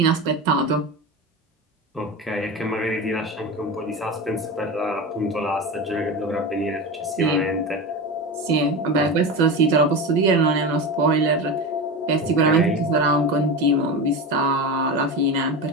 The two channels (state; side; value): normal; both; correlation 0.23